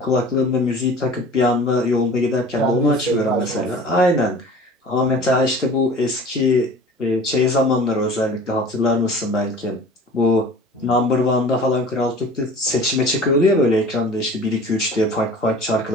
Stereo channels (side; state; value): both; normal; correlation 0.42